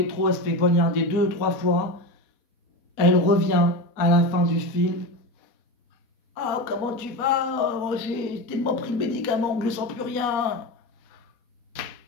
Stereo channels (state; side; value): late; right; 4.2 ms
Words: elle se fait poignarder 2 ou 3 fois. Elle revient à la fin du film. Ah, comment tu vas? Oh, j'ai tellement pris le médicament que je sens plus rien.